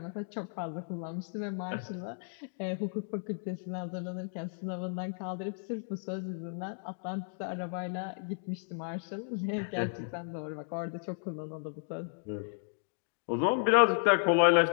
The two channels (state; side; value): silent; right; digital silence